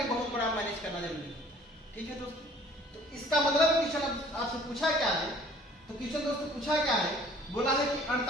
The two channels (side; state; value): both; normal; correlation 0.53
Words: बहुत बड़ा मैनेज करना जरूरी है। ठीक है दोस्तों, तो इसका मतलब क्वेश्चन आपसे पूछा क्या है, तो क्वेश्चन दोस्तों पूछा क्या है, बोला है कि